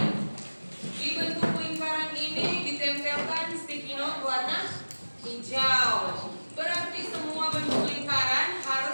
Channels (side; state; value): both; inverted; correlation -1.00